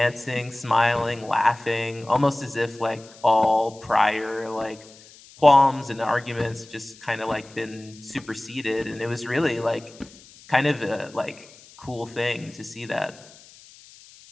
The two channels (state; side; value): noise; left; hiss, 23 dB below the sound